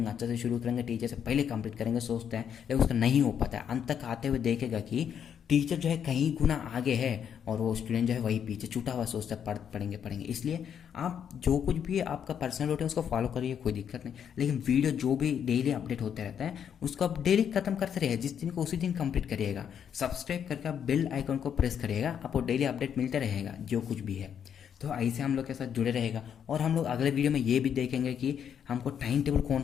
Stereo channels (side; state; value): right; quieter; 8.3 dB